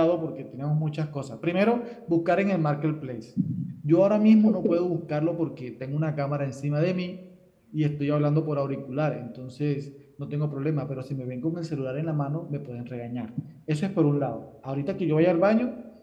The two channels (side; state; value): both; identical; correlation 1.00